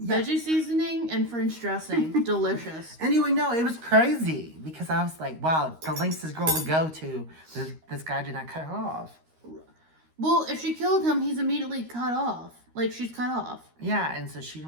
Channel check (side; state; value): left; late; 13 ms